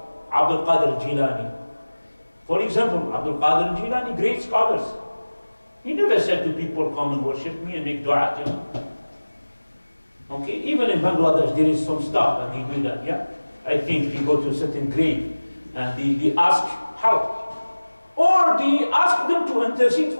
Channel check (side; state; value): both; inverted; correlation -1.00